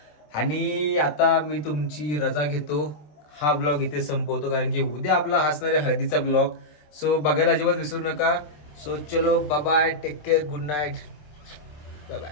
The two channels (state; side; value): late; right; 27 ms